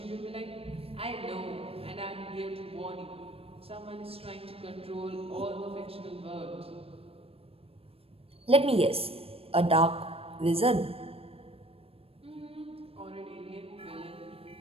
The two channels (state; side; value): late; left; 0.28 ms